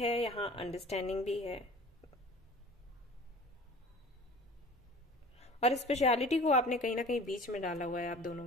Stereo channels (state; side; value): normal; both; correlation 0.43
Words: यहाँ अंडरस्टैंडिंग भी है, और स्पेशलिटी को आपने कहीं ना कहीं बीच में डाला हुआ है आप